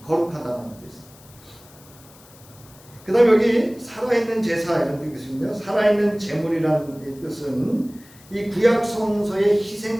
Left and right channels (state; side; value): noise; left; hiss, 24 dB below the sound